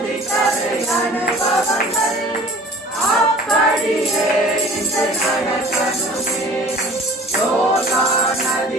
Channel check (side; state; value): both; normal; correlation 0.46